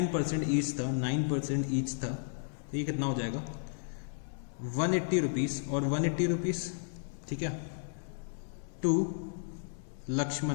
ईच था, 9% ईच था, तो ये कितना हो जाएगा 180 रुपीज़ और 180 रुपीज़, ठीक है, to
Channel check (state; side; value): silent; right; 55 dB below the other